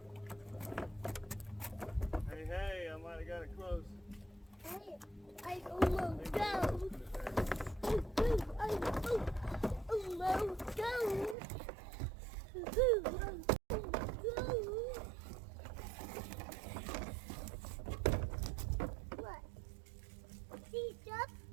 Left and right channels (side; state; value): left; drops out; at 11.4 s